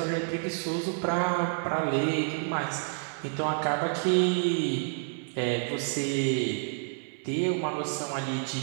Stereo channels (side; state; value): left; silent; 58 dB below the other